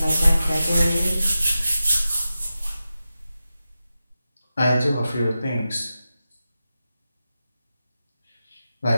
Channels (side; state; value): both; inverted; correlation -0.93